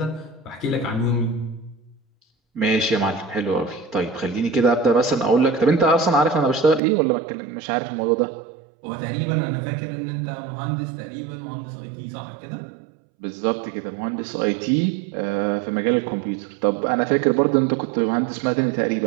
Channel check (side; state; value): left; drops out; at 6.8 s